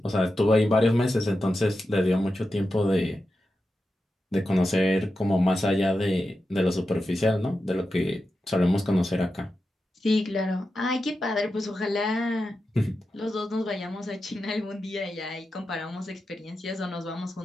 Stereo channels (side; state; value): both; normal; correlation 0.90